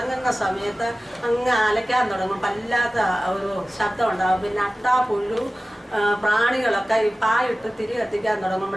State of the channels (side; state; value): both; normal; correlation 0.96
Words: സമയത്ത് അങ്ങ് അലയ്ക്കാൻ തുടങ്ങും. വല്ലാത്ത ഒരു ശബ്ദം ഉണ്ടാകും. പിന്നെ അട്ടാ പുഴു പ്രാണികളൊക്കെ ഈ പായിട്ട് തിരി കത്തിക്കാൻ